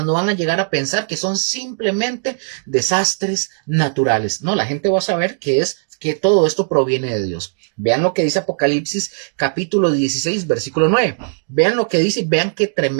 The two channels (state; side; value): silent; left; digital silence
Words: no van a llegar a pensar que son simplemente desastres naturales. No, la gente va a saber que todo esto proviene de Dios. Vean lo que dice Apocalipsis capítulo 16, versículo 9. Vean lo que dice y vean qué